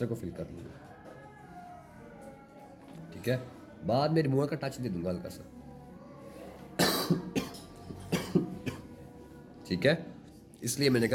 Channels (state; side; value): identical; both; correlation 1.00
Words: को फिल कर लूँगा। ठीक है, बाद में रिमूवर का टच दे दूंगा हल्का सा। ठीक है, इसलिए मैंने